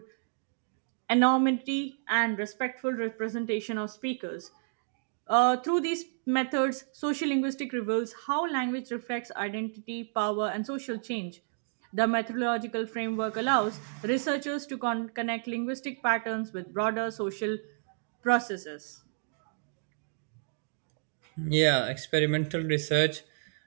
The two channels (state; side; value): silent; left; digital silence